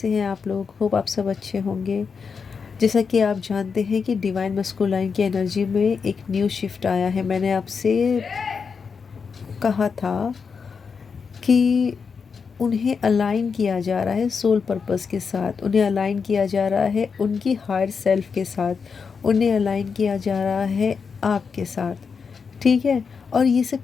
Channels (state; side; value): quieter; right; 5.7 dB